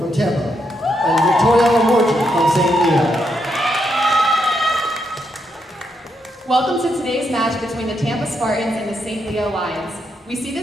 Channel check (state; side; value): normal; both; correlation 0.80